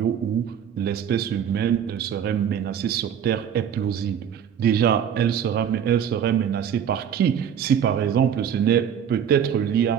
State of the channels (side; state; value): left; quieter; 8.5 dB